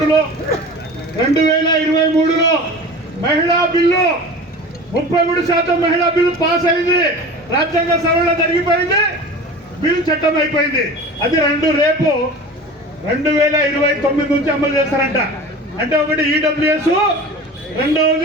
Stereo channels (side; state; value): both; normal; correlation 0.37